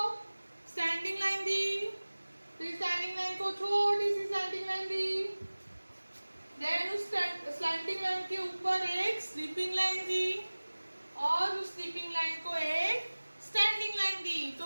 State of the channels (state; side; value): inverted; both; correlation -1.00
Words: स्टैंडिंग लाइन दी, फिर स्टैंडिंग लाइन को छोटी सी स्लैंटिंग लाइन दी, देन उस स्लैंटिंग लाइन के ऊपर एक स्लीपिंग लाइन दी, और उस स्लीपिंग लाइन को एक स्टैंडिंग लाइन दी।